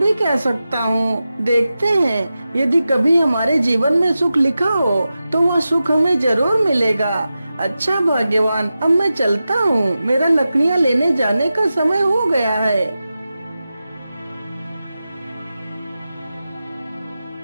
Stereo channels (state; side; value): inverted; both; correlation -0.93